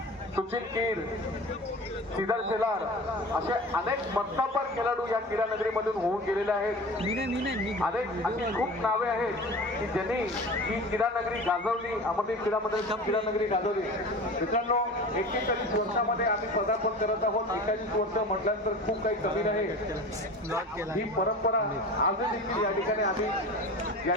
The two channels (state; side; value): normal; both; correlation 0.35